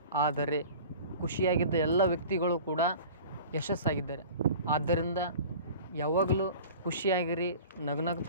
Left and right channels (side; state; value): both; inverted; correlation -0.41